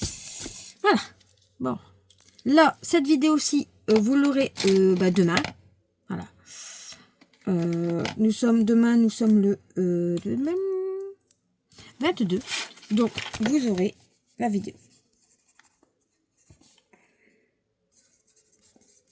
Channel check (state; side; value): identical; both; correlation 1.00